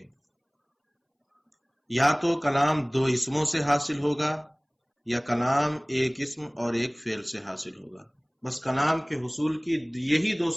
یا تو کلام دو اسموں سے حاصل ہوگا یا کلام ایک اسم اور ایک فعل سے حاصل ہوگا، بس کلام کے حصول کی یہی دو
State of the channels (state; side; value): identical; both; correlation 1.00